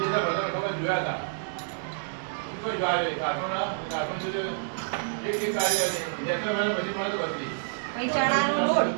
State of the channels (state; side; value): silent; left; digital silence